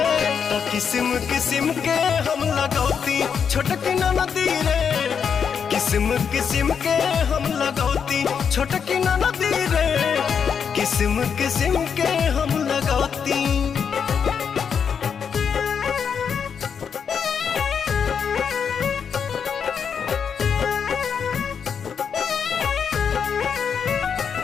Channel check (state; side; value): quieter; right; 6.9 dB